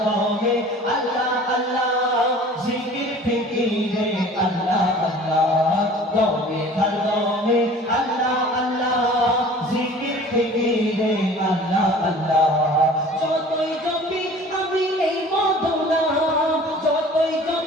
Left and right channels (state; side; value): normal; both; correlation 0.46